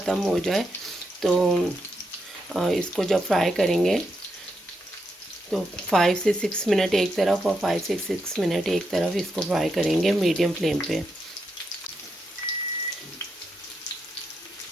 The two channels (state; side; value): normal; both; correlation 0.83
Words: हो जाए। तो इसको जब फ्राई करेंगे तो 5 से 6 मिनट एक तरफ और 5 से 6 मिनट एक तरफ इसको फ्राई करेंगे मीडियम फ्लेम पे।